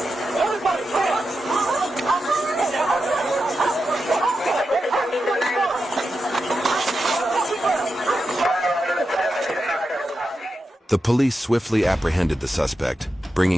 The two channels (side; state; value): both; normal; correlation 0.89